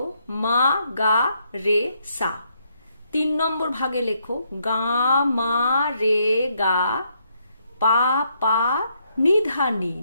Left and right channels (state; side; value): inverted; both; correlation -0.74